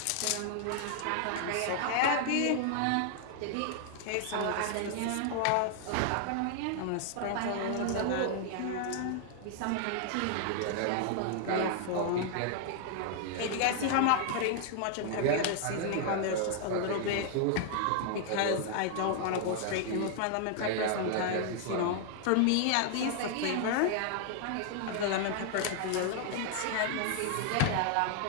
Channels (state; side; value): different; both; correlation 0.00